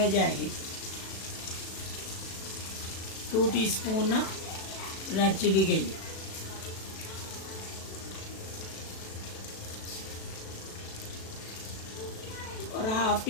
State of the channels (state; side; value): late; right; 37 ms